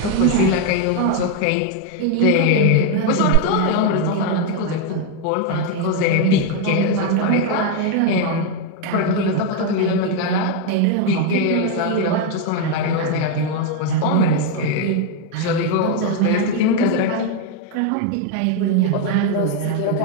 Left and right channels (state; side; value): different; both; correlation 0.01